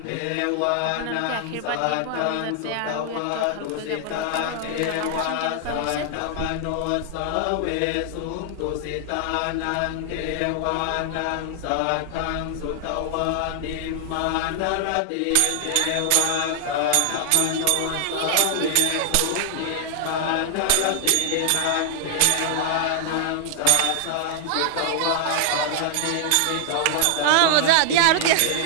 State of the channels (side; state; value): both; different; correlation 0.00